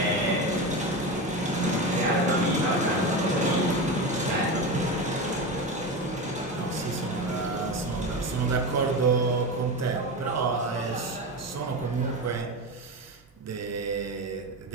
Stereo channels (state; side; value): normal; both; correlation 0.21